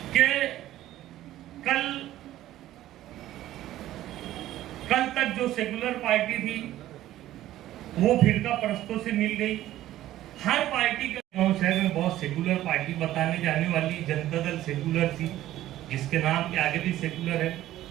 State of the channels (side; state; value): left; quieter; 14.0 dB